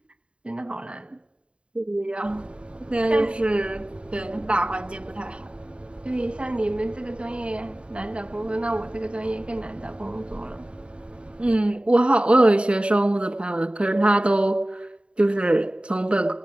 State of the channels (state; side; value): late; left; 0.056 ms